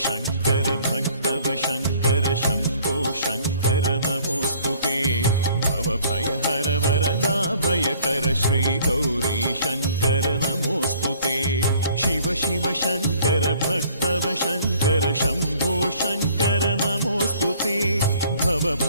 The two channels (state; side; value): inverted; both; correlation -0.56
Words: ಶಂಕರ ಭಕ್ತವ ಶಂಕರ ಶಂಭೋ ಶಂಕರ ನಮೋಸ್ತುತೆ ಭವ ಭಯ ಹರ ವರದಾ ಭಯಕರ ಶ್ರೀ ಗೌರಿ ಶಂಕರ ನಮೋಸ್ತುತೆ ಶಿವ ಶಿವ ಶಂಕರ ಭಕ್ತವ ಶಂಕರ ಶಂಭೋ ಶಂಕರ ನಮೋಸ್ತುತೆ ಭವ